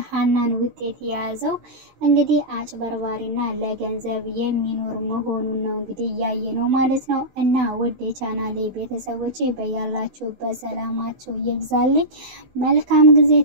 ሀናን ውጤት የያዘው እንግዲህ አጭበርባሪና ለገንዘብ የሚኖር መሆኑን ነው እንግዲህ ያየ ነው ማለት ነው። እና ውድ የቻናሌ ቤተሰቦቼ በያላችሁበት ሰላማችሁ ይብዛልኝ። መልካም ጊዜ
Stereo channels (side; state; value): left; late; 16 ms